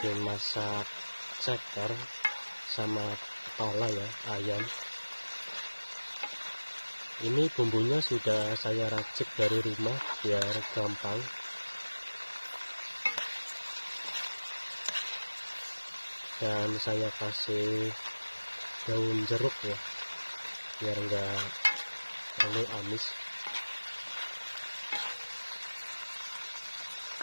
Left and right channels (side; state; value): both; inverted; correlation -1.00